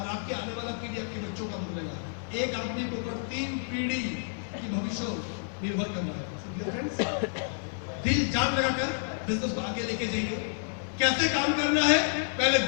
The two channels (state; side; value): silent; right; 58 dB below the other